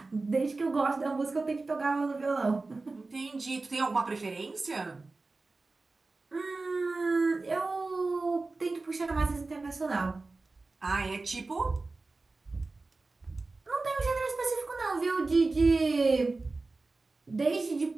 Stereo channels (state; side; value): quieter; left; 3.5 dB